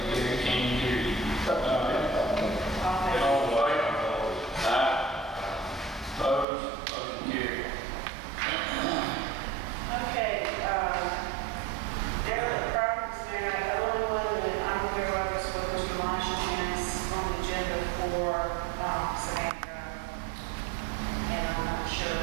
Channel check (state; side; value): drops out; left; at 6.5 s